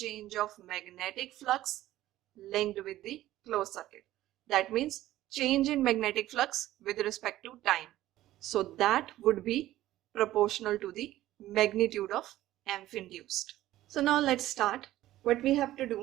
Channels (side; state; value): left; quieter; 14.8 dB